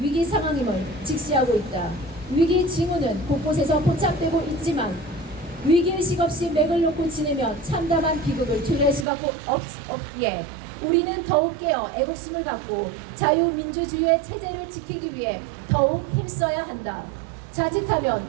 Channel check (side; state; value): left; drops out; at 9.1 s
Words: 상황임을 직시하고 있다. 위기 징후는 곳곳에서 포착되고 있지만 위기의식 없이 맥을 놓고 지내면 참담한 비극을 초래할 수밖에 없기에 우리는 더욱 깨어 애국심을 갖고 자유민주주의의 체제를 지키기 위해 더욱 힘써야 한다. 자칫하면